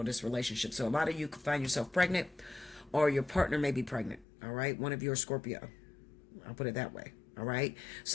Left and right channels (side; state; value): right; drops out; at 4.2 s